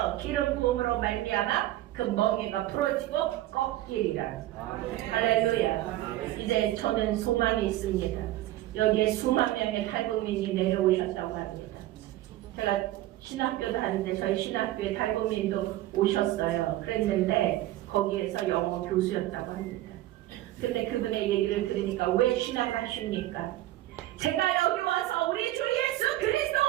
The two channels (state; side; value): quieter; left; 15.3 dB